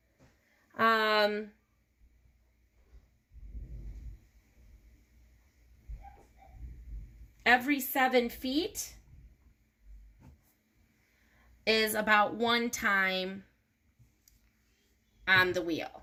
7 feet is about 1 time on the wheel.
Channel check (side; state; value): both; identical; correlation 1.00